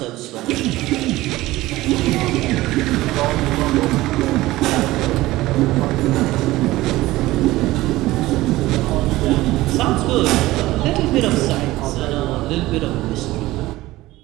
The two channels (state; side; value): quieter; left; 17.8 dB